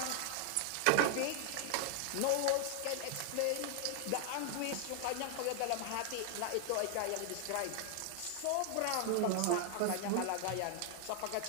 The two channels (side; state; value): both; different; correlation 0.00